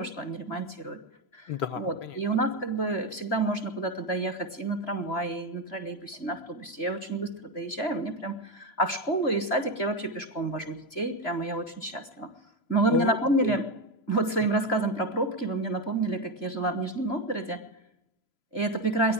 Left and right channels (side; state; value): right; late; 3.0 ms